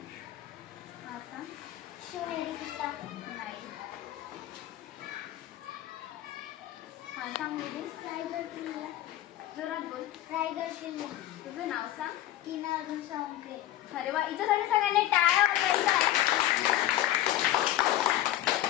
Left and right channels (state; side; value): quieter; right; 13.7 dB